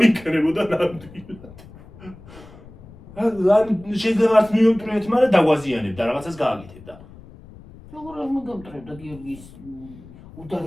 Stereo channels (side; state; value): left; noise; rumble, 20 dB below the sound